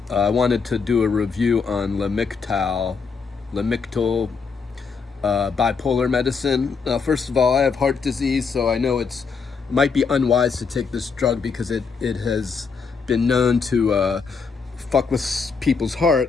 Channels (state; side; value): quieter; right; 5.3 dB